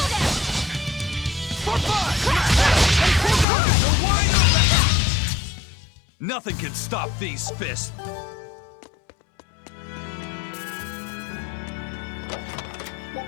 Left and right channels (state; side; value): drops out; right; at 3.5 s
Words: Form 5! You're wide open! Nothing can stop these fists.